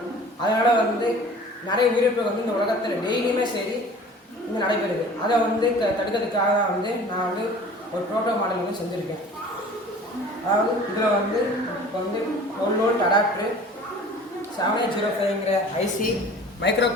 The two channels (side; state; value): both; normal; correlation 0.45